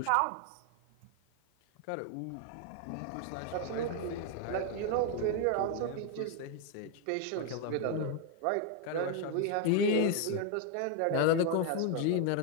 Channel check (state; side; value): different; both; correlation 0.01